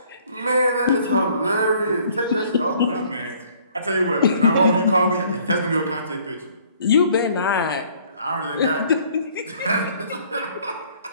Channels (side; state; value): both; inverted; correlation -0.59